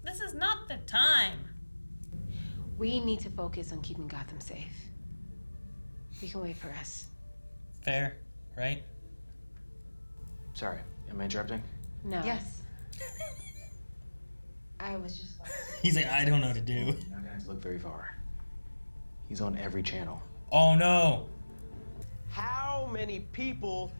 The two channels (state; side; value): inverted; both; correlation -1.00